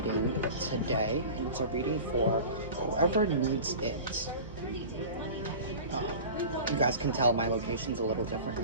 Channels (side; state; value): both; inverted; correlation -0.36